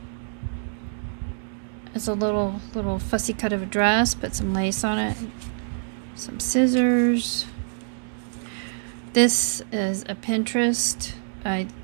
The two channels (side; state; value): left; silent; digital silence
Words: it's a little fussy cut of a dress. Put some lace on it. Some scissors. This is a Pinterest. I'm